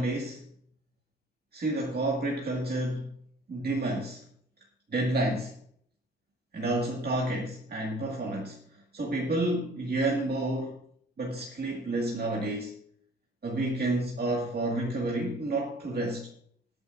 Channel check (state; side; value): normal; both; correlation 0.51